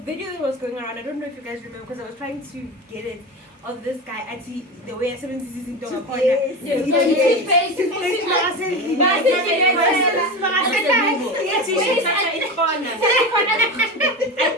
that was going around, I don't know if you guys remember, because I was trying to get it, of this guy at the way I said this in the corner.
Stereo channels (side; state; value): both; normal; correlation 0.23